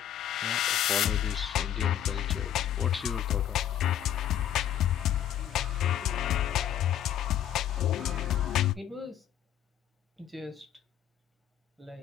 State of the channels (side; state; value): right; quieter; 10.7 dB